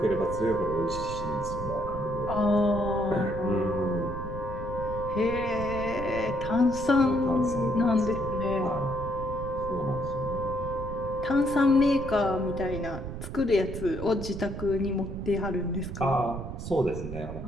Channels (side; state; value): right; noise; rumble, 8 dB below the sound